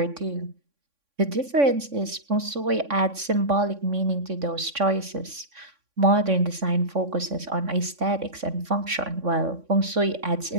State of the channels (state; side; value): late; left; 3.6 ms